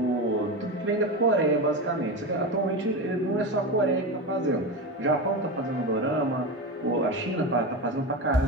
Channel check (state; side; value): normal; both; correlation 0.20